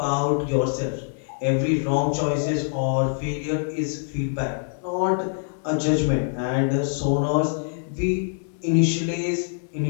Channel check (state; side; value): silent; right; digital silence